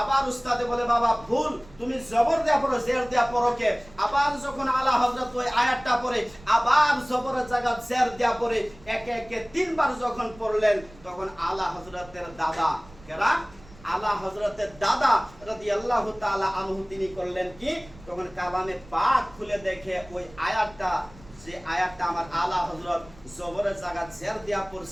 উস্তাদে বলে বাবা ভুল, তুমি জবর দেয়া পড়ো জের দেয়া পড়ো কে? আবার যখন আলা হযরত ওই আয়াতটা পড়ে আবার জবরের জায়গা জের দেয়া পড়ে। একে একে তিনবার যখন পড়লেন তখন আলা হযরতের দাদা কেরা আলা হযরতের দাদা রাদিয়াল্লাহু তাআলা আনহু তিনি করলেন কি তখন কালামে পাক খুলে দেখে ওই আয়াতটা যে আয়াতটা আমার আলা হযরত জবরের জায়গা জের দেয়া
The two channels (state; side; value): noise; right; rumble, 22 dB below the sound